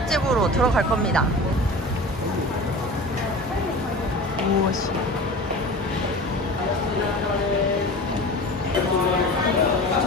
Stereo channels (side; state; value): both; normal; correlation 0.35